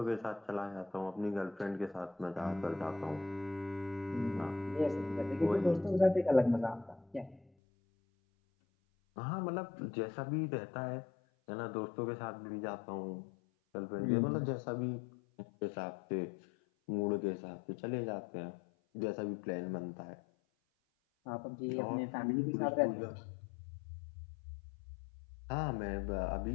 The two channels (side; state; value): right; drops out; at 7.5 s